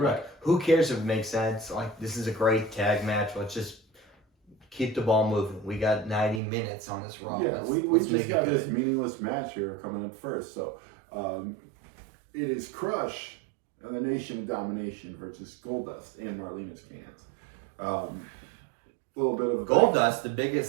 Who cares if it makes sense? Like, this is a great tag match. Let's just keep the ball moving. We got 90 minutes on this Raw. Yeah, we let's just make it got good. this meaningless match here coming up first. So, it is Crush and the Nation of Domination versus Goldust and Marlena's cans. A little bit of Goldust, the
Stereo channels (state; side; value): drops out; left; at 6.4 s